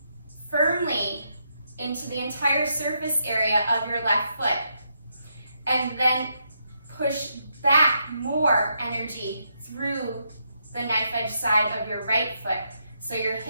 firmly into the entire surface area of your left foot. And then push back more energy through the knife edge side of your right foot, so your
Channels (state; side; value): inverted; both; correlation -0.79